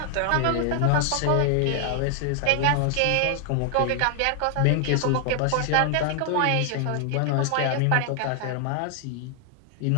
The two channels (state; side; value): different; both; correlation 0.00